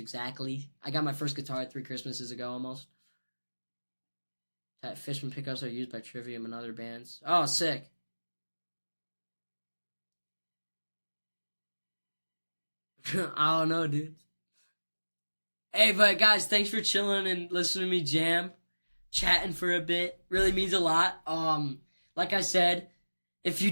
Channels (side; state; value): both; inverted; correlation -1.00